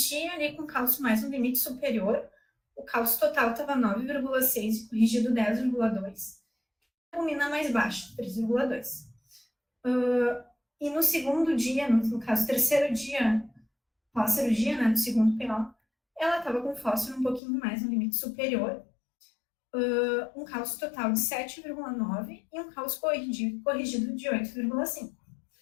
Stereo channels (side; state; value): right; drops out; at 17.4 s